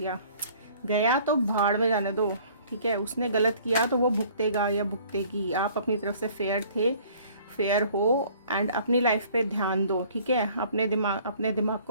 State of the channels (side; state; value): both; inverted; correlation -0.54